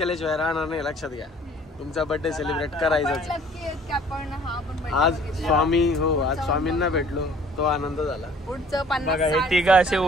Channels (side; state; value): both; normal; correlation 0.54